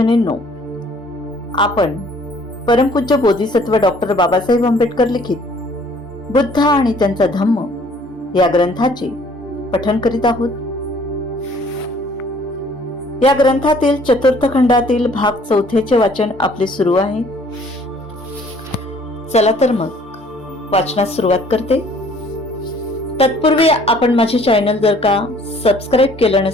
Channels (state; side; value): normal; both; correlation 0.57